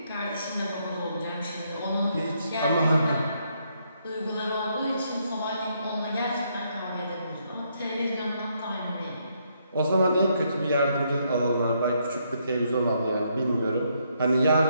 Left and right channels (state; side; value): inverted; both; correlation -0.74